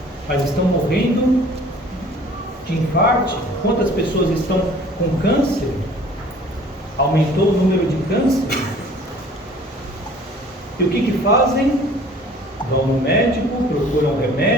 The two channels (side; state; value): both; normal; correlation 0.51